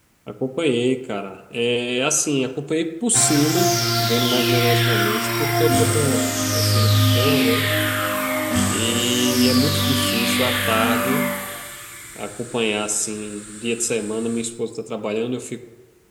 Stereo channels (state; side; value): identical; both; correlation 1.00